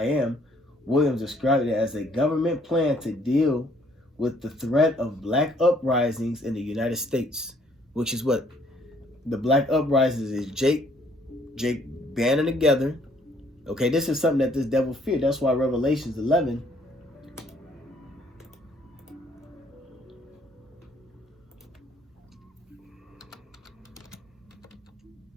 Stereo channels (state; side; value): normal; both; correlation 0.64